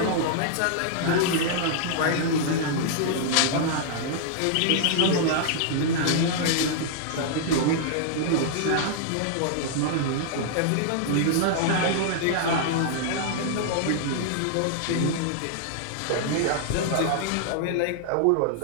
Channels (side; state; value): both; different; correlation -0.01